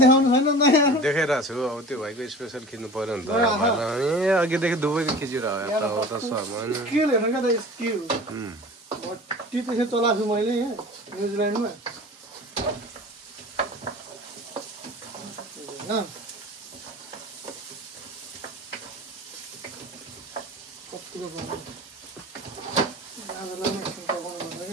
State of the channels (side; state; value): both; normal; correlation 0.39